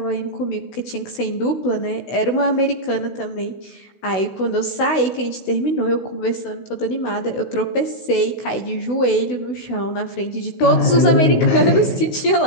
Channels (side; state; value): right; late; 16 ms